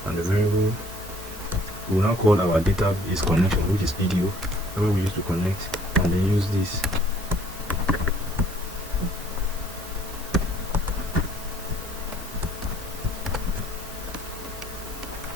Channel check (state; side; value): normal; both; correlation 0.58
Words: and the variable we will now call our database connection, which is PDO, where we use to connect, and then use this.